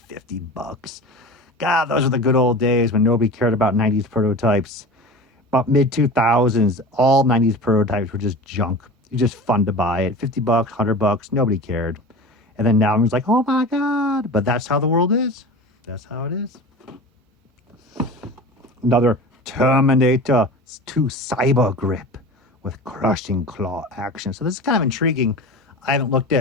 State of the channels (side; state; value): both; normal; correlation 0.33